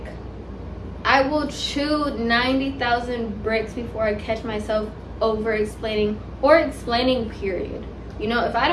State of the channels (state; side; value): identical; both; correlation 1.00